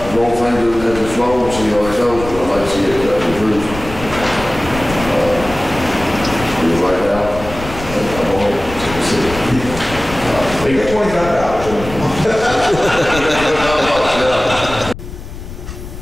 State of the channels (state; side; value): noise; left; rumble, 11 dB below the sound